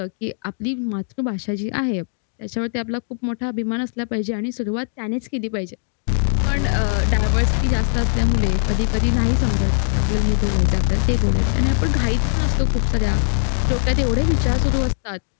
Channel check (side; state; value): right; silent; digital silence